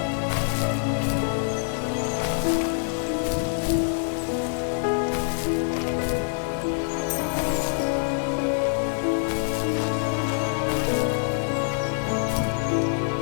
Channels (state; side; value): silent; right; digital silence